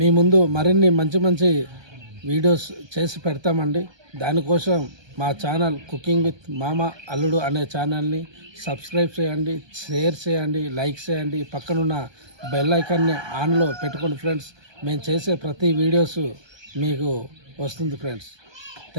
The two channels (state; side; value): late; left; 1.2 ms